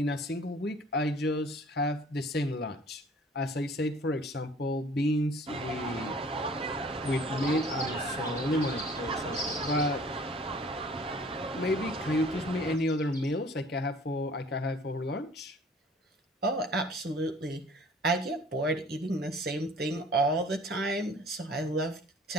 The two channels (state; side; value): normal; both; correlation 0.51